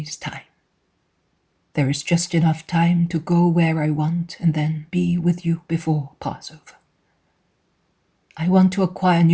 time. There is just enough time to go where I want and then be with you before Passover. I want to acquire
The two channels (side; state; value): both; identical; correlation 1.00